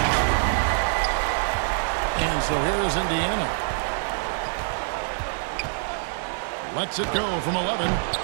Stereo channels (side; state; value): left; silent; digital silence